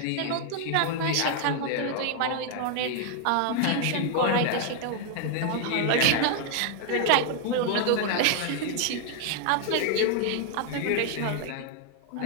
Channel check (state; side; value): different; both; correlation 0.00